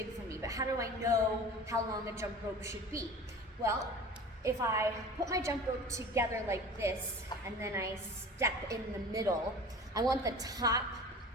for me, but how do I know how long a jump rope should be? Well, if I put my jump rope together like this, and then I step in the middle, I want the top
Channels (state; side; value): normal; both; correlation 0.39